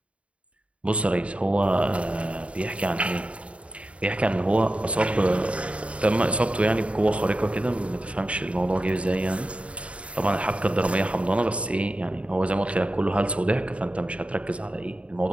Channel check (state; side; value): late; left; 0.062 ms